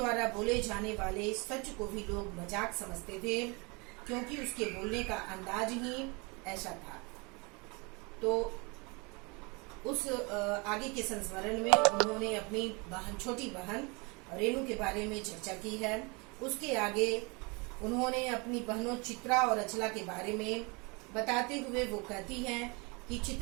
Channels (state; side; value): quieter; left; 29.0 dB